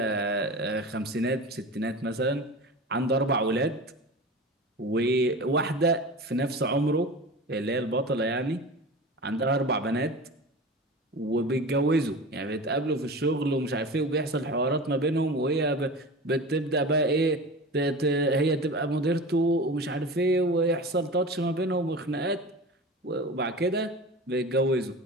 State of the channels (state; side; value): normal; both; correlation 0.33